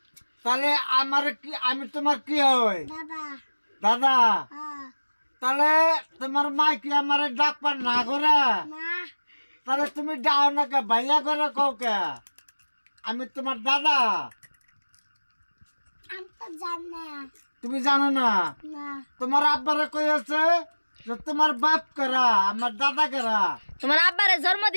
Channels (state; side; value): inverted; both; correlation -1.00